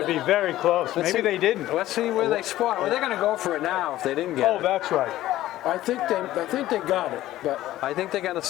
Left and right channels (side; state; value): right; quieter; 14.8 dB